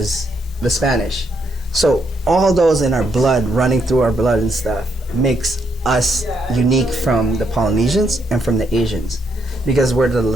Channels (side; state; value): both; normal; correlation 0.76